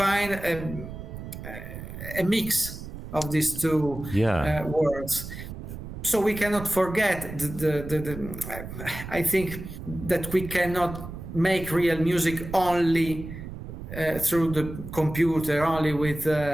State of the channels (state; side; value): noise; right; rumble, 10 dB below the sound